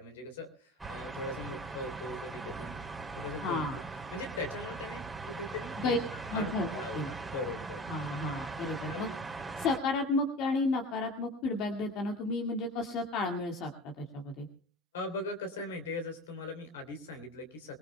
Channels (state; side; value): normal; both; correlation 0.36